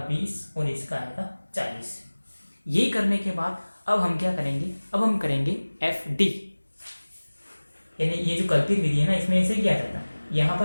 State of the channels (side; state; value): both; inverted; correlation -1.00